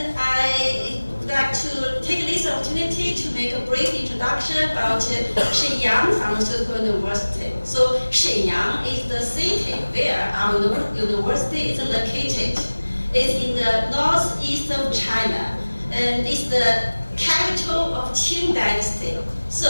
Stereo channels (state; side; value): inverted; both; correlation -1.00